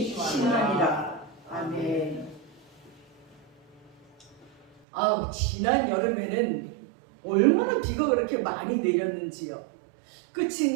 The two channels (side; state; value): left; drops out; at 4.7 s